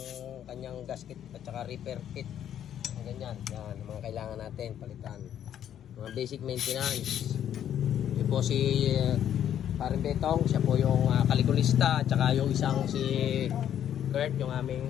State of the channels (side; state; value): right; quieter; 10.1 dB